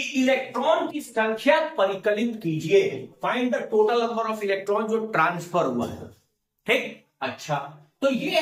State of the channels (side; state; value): both; identical; correlation 1.00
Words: इलेक्ट्रॉन की संख्या परिकलित कीजिए, find the total number of electron जो ट्रांसफर हुआ है। ठीक, अच्छा तो ये